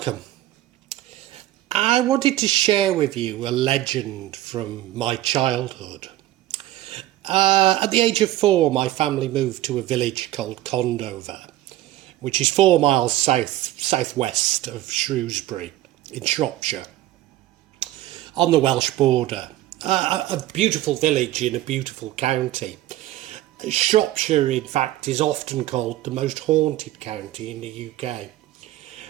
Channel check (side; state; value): left; quieter; 15.1 dB